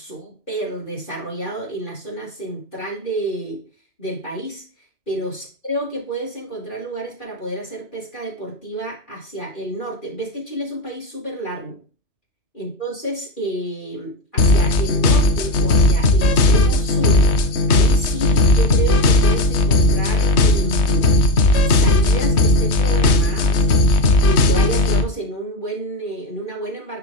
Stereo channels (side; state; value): right; late; 3.1 ms